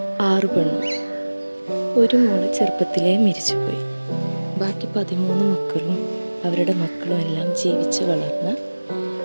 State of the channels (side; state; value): both; inverted; correlation -1.00